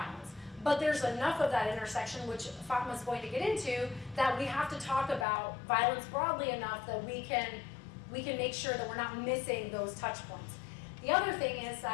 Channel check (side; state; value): right; drops out; at 5.2 s